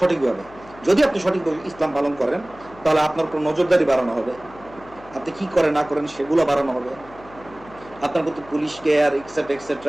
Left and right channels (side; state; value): left; noise; hum, 21 dB below the sound